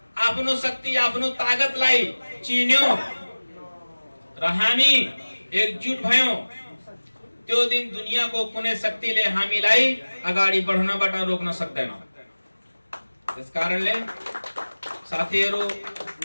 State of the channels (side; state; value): both; inverted; correlation -1.00